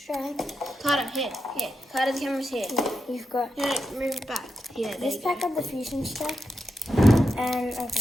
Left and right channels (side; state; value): both; normal; correlation 0.87